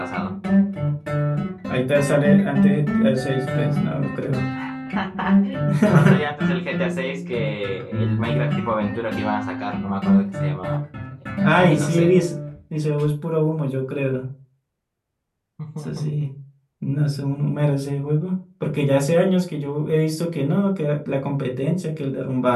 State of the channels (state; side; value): identical; both; correlation 1.00